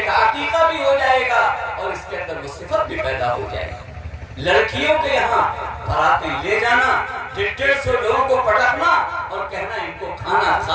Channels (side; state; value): both; identical; correlation 1.00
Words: کا عقیقہ بھی ہو جائے گا اور اس کے اندر وہ صفت بھی پیدا ہو جائے گی۔ لڑکیوں کے یہاں باراتیں لے جانا، 150 لوگوں کو پٹکنا اور کہنا ان کو کھانا